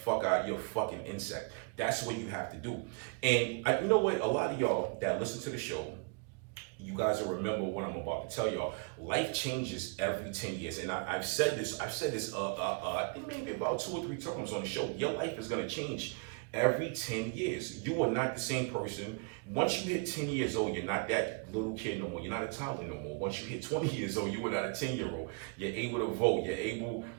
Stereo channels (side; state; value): left; quieter; 34.6 dB